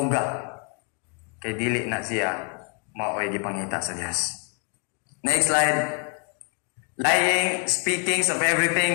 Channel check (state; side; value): quieter; right; 38.3 dB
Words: Kay dili na siya maoy gipangita sa Dios. Next slide. Lying, speaking of